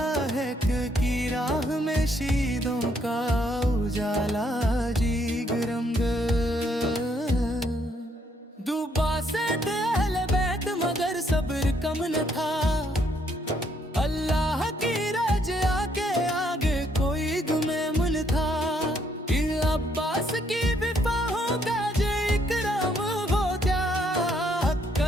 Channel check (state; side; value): normal; both; correlation 0.70